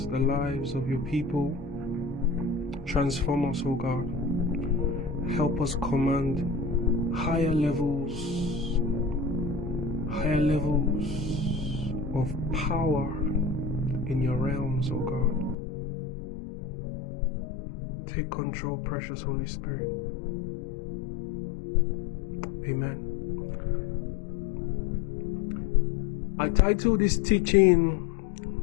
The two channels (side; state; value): right; drops out; at 15.6 s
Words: the lives of your people. Transform us, O God. Help us command higher levels of power in your realms, O God. Take control, precious Holy Spirit. Amen. I titled this